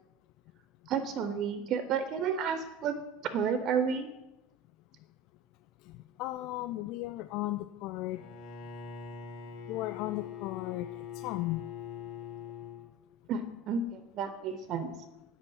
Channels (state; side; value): normal; both; correlation 0.32